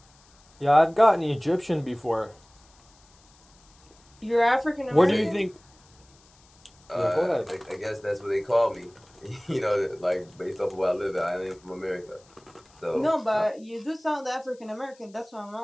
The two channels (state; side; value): noise; left; hiss, 30 dB below the sound